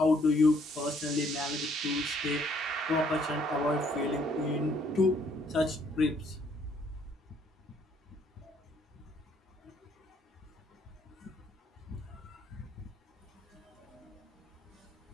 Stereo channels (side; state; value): both; normal; correlation 0.65